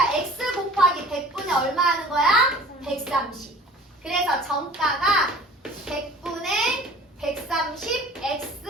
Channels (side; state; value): both; normal; correlation 0.46